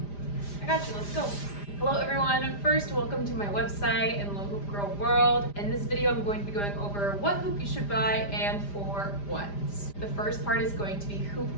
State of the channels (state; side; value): late; right; 5.0 ms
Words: I got you, let's go. Hello everyone, first welcome to my website and Little Hoop Girl World. In this video I'm going to be going over what hoop you should buy and for what. The first part is going to be hoop